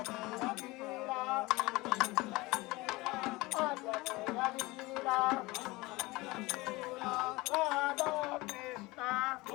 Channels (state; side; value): quieter; right; 21.8 dB